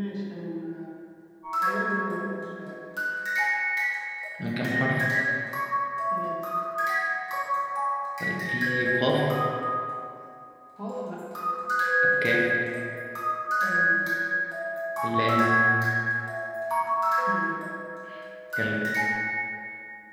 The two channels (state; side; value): identical; both; correlation 1.00